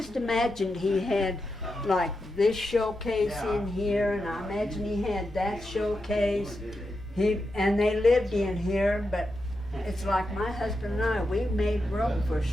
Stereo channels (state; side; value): noise; left; hum, 19 dB below the sound